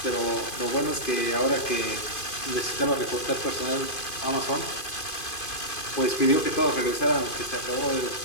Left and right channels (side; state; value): right; late; 2.5 ms